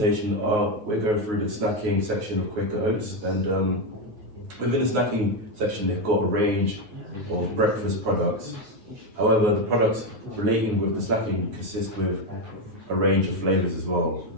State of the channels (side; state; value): left; late; 9.5 ms